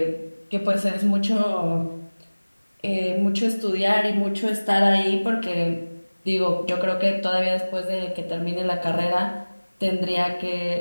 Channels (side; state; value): both; inverted; correlation -1.00